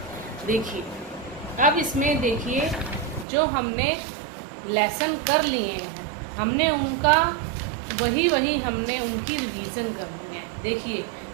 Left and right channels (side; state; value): left; drops out; at 3.2 s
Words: देखिए। अब इसमें देखिए जो हमने लेसन कर लिए हैं, हमने उनका वही हमने उनकी रिवीजन करनी है। देखिए